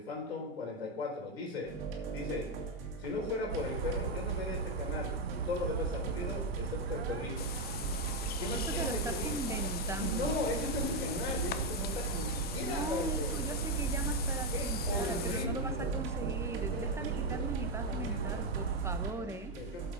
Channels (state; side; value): normal; both; correlation 0.05